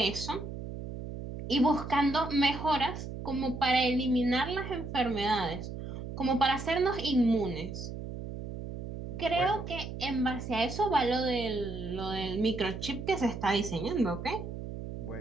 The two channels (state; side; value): noise; right; hum, 8 dB below the sound